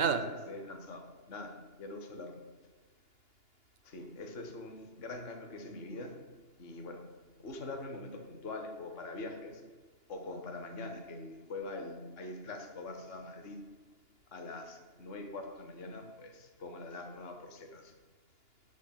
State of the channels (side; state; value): right; late; 2.9 ms